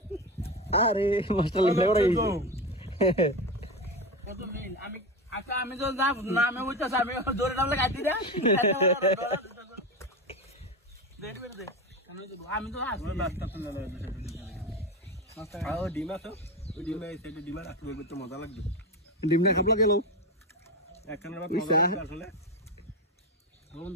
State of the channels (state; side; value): normal; both; correlation 0.20